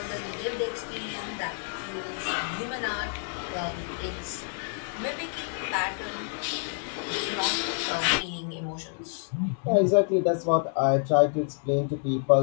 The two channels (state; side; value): silent; right; 58 dB below the other